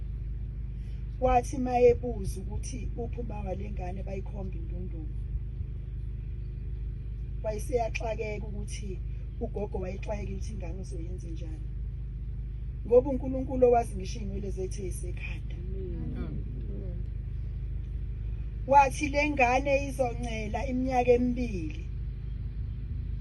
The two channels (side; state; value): both; identical; correlation 1.00